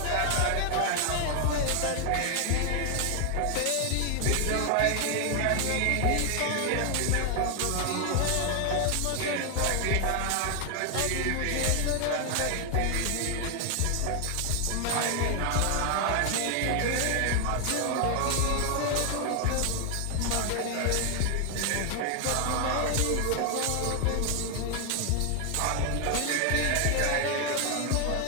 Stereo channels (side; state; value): both; different; correlation 0.00